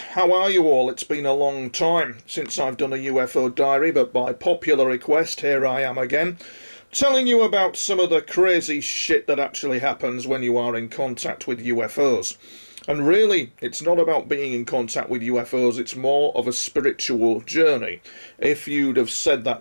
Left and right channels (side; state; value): both; inverted; correlation -1.00